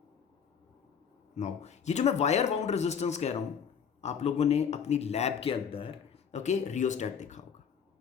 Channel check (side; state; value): right; quieter; 7.2 dB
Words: नाउ ये जो मैं वायर बाउंड रेजिस्टेंस कह रहा हूं, आप लोगों ने अपनी लैब के अंदर ओके रियोस्टेट देखा होगा.